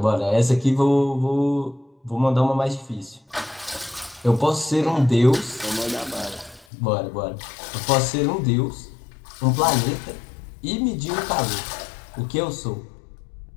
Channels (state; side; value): drops out; right; at 6.7 s